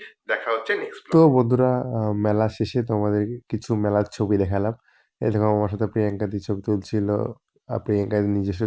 দেখা হচ্ছে নেক্সট ব্লগ। তো বন্ধুরা, মেলা শেষে তোমাদের কিছু মেলার ছবি দেখালাম। এরকম আমার সাথে প্রিয়াঙ্কা দি ছবি তুলছিল, প্রিয়াঙ্কার নিজস্ব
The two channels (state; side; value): identical; both; correlation 1.00